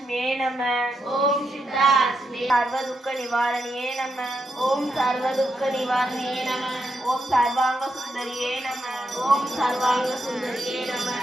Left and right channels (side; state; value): both; normal; correlation 0.83